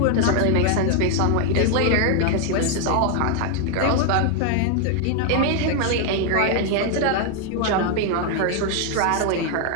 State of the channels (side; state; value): both; different; correlation 0.01